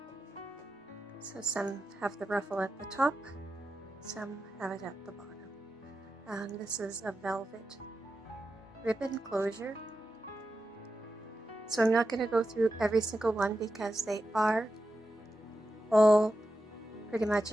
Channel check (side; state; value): both; normal; correlation 0.90